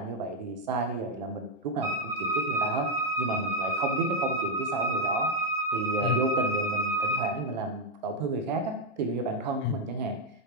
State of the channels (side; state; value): both; normal; correlation 0.02